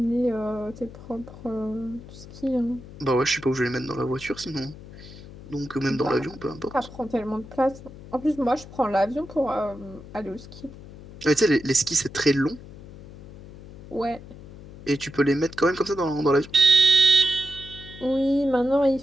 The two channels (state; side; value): noise; left; hum, 16 dB below the sound